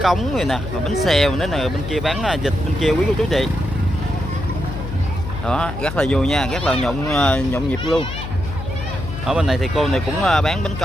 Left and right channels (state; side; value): noise; left; hum, 7 dB below the sound